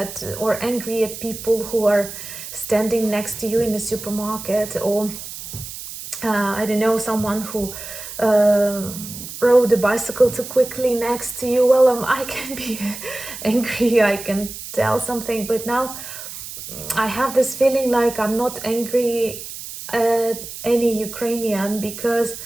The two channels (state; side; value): noise; right; hiss, 11 dB below the sound